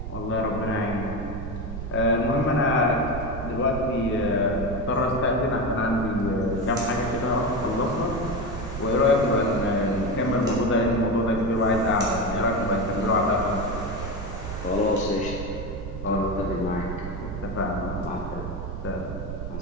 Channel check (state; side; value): noise; right; rumble, 7 dB below the sound